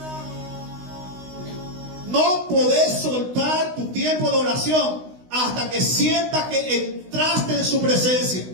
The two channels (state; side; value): late; left; 16 ms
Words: No podés soltar tu tiempo de oración hasta que sientas que entraste en su presencia.